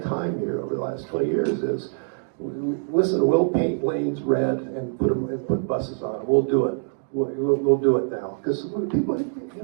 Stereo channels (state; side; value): silent; left; digital silence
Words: here over the last 20 years is, listen, we'll paint lanes red and put buses on it. We'll do it. We'll do it now because people,